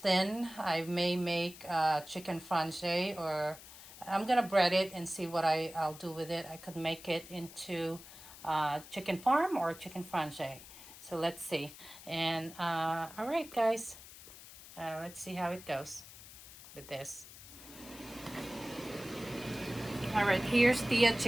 I may make chicken franche, or I'm gonna bread it and see what I'll do with it. I could make it into chicken parm or chicken franche. So let's see. And all right, guys, let's see how it goes with this. All right, here's the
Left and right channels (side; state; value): left; noise; hiss, 17 dB below the sound